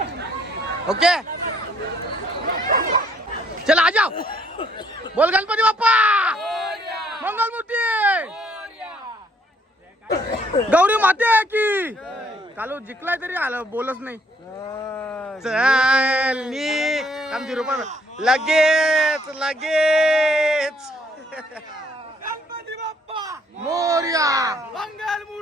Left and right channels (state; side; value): normal; both; correlation 0.66